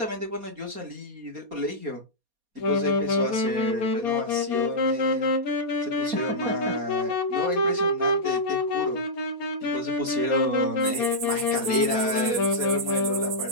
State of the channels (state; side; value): late; left; 4.2 ms